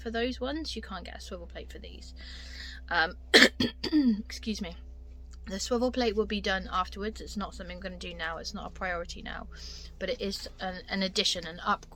those ones. You can't get a swivel plate for these. Excuse me. The swivel plate will be done afterwards. It's not something I'm going to do now. It's not a priority now, but it is an addition, an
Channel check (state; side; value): identical; both; correlation 1.00